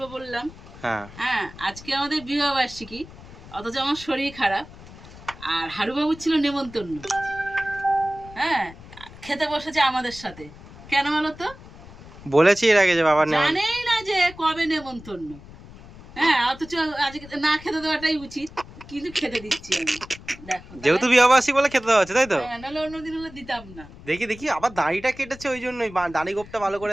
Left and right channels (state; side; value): noise; left; rumble, 18 dB below the sound